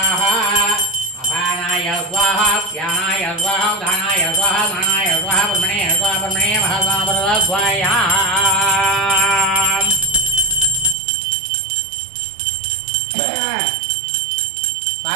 अपानाय स्वाहा व्यानाय स्वाहा उदानाय स्वाहा मानाय स्वाहा ब्रह्मणे स्वाहा ब्रह्मणे महास्वाहा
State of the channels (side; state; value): left; drops out; at 11.0 s